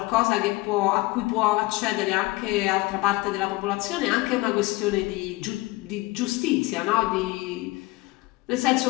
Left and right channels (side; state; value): right; quieter; 21.4 dB